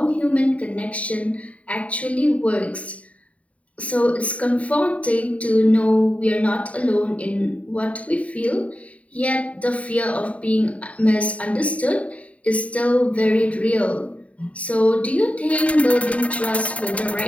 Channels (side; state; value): right; late; 0.066 ms